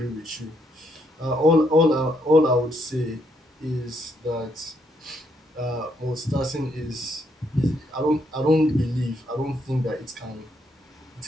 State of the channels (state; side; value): normal; both; correlation 0.74